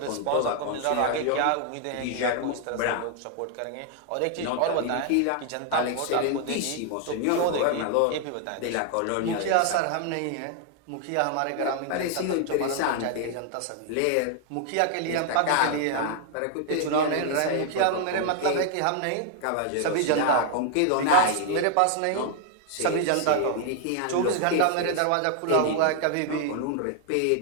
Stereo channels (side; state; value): both; different; correlation 0.00